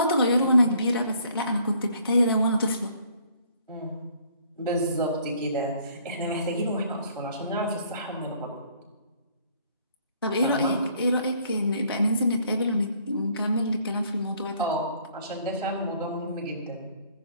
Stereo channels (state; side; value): inverted; both; correlation -0.61